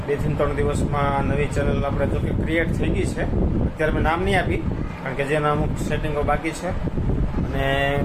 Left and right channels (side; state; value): both; identical; correlation 1.00